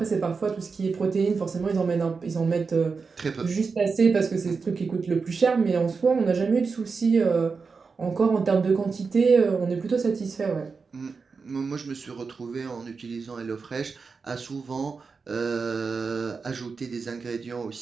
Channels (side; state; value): left; quieter; 4.9 dB